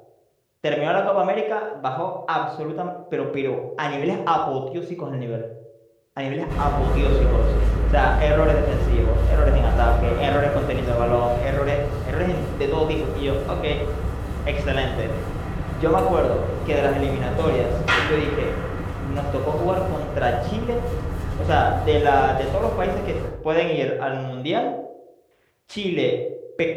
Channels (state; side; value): identical; both; correlation 1.00